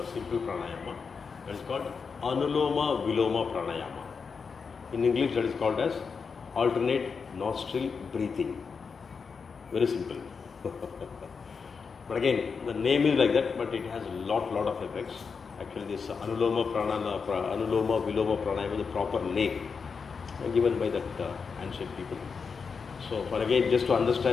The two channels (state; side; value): quieter; right; 5.5 dB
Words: simple pranayama. That is called Anuloma Viloma Pranayama. In English that is called as alternate nostril breathing. Very simple. But again, the name is like that, but it has a lot of effects. Actually, this Anuloma Viloma Pranayama is the proper name given by that ancient people. So, for again, just to